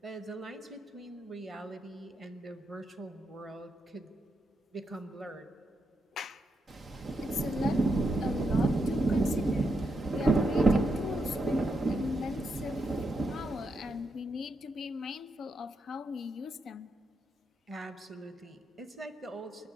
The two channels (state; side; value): normal; both; correlation 0.82